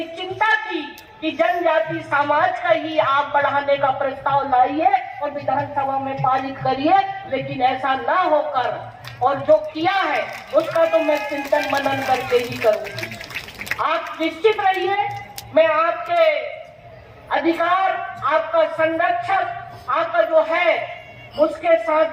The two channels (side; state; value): both; identical; correlation 1.00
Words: चिंता थी कि जनजाति समाज का ही आप बढ़ाने का प्रस्ताव लाइए और विधानसभा में पारित करिए, लेकिन ऐसा ना होकर, और जो किया है उसका तो मैं चिंतन मनन करके ही करूंगी। आप निश्चित रहिए, मैं आपके अधिकार, आपका संरक्षक, आपका जो है उसके